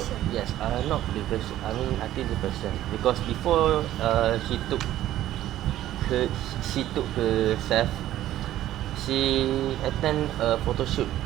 yes, not depression. I mean, I think depression because before her, she took herself. She attend a photo shoot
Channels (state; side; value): quieter; left; 13.3 dB